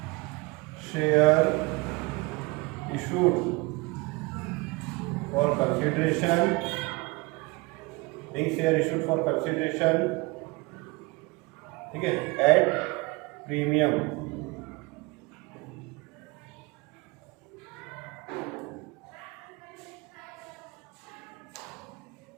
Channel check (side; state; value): left; quieter; 24.9 dB